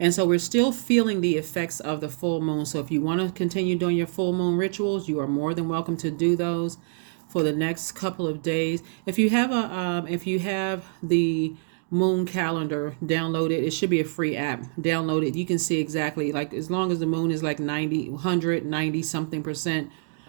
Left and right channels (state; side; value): silent; left; digital silence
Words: so we're still feeling the effects of the full moon. So if you want to continue doing your full moon rituals, you are more than welcome to do those for the next couple of days. If you have the moon calendar, download it. It should be a free app. Download it. You can see exactly, like, as long as the moon is like 90, 190 something percent,